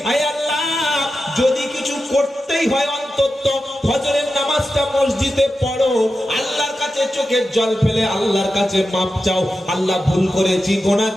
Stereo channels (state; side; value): normal; both; correlation 0.91